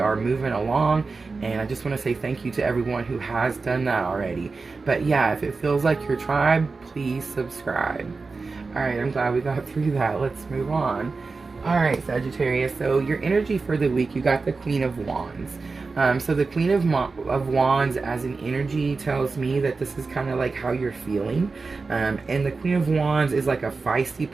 moving along. And I just want to say thank you to everyone who has done that already. But yeah, if it feels like your tribe, please subscribe. Alright, I'm glad we got through that. Let's move on. Alright, Sagittarius, so your energy for the week, you got the Queen of Wands. So the Queen of Wands as an energy tells me that this is kind of like how you're feeling. And the Queen of Wands is like a feisty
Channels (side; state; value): left; quieter; 4.2 dB